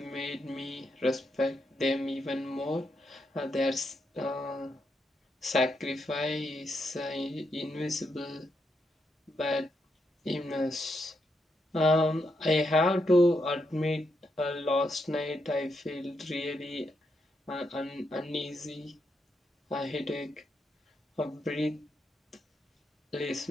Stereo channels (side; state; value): both; normal; correlation 0.81